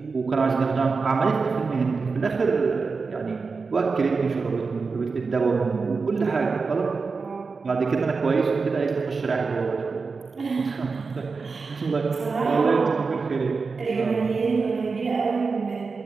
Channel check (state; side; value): quieter; left; 4.6 dB